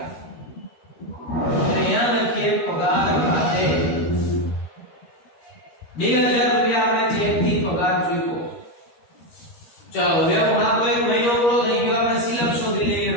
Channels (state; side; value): late; right; 13 ms